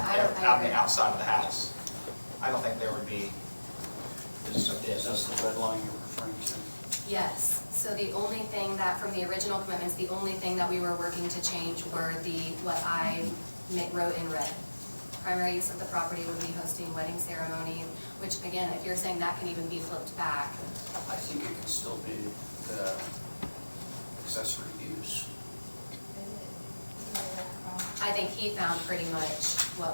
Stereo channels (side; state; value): both; inverted; correlation -1.00